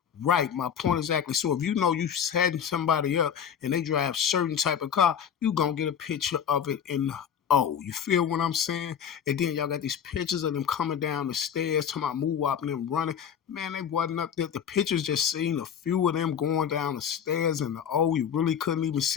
Right, my point exactly. So if you know you setting somebody up and they drive certain type of car, you gonna get a picture of it in the O. You feel what I'm saying? And then y'all got these pictures of them coming down the stairs, talking about move up and them running. Man, they wasn't up there. The pictures just seen a few of them going down the stairs in the O. You really couldn't even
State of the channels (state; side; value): quieter; right; 8.1 dB